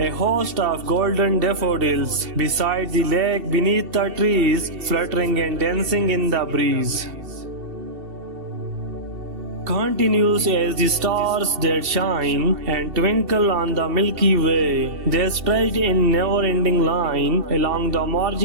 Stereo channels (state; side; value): late; left; 2.7 ms